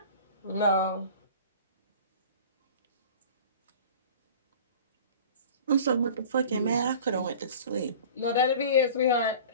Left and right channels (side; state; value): both; inverted; correlation -0.41